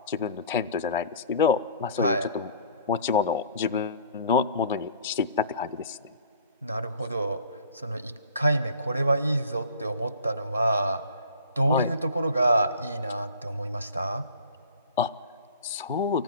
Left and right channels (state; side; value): inverted; both; correlation -0.47